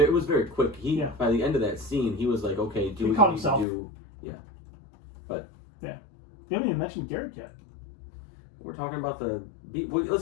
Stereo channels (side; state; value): right; drops out; at 3.7 s